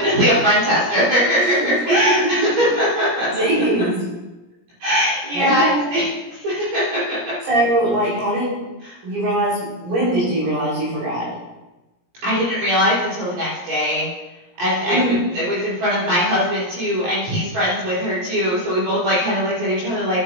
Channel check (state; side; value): late; left; 17 ms